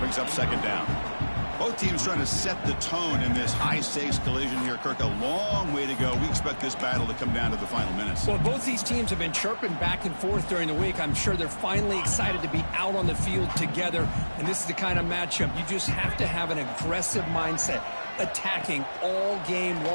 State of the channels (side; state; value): both; inverted; correlation -1.00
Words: up second down. Both teams trying to set the tone in this high-stakes collision here, Kirk. A long way to go. We expect this battle to come down to the final minutes. Well, both these teams have been chirping back and forth during the week. I'm sure they're finally excited to be out on the field together. And this is the kind of matchup you just have to have an aggressive mindset, attacking all game